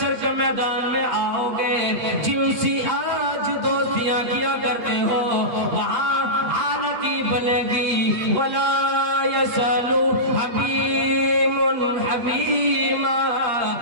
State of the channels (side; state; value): left; late; 8.5 ms